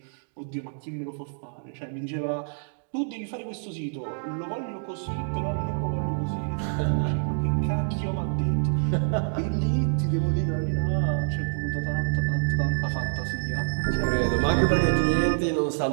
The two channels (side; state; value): left; silent; digital silence